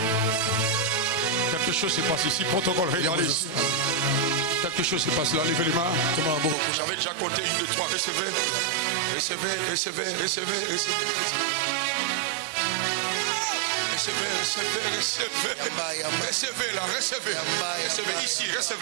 Quelque chose se passe ici. Protocole, regardez ici. Quelque chose se passe là. Levez les mains. J'avais déjà compté 1, 2, 3. Recevez. Recevez, recevez, recevez, recevez. Recevez, recevez, recevez. Recevez là, recevez. Recevez ici,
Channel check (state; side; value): drops out; left; at 6.6 s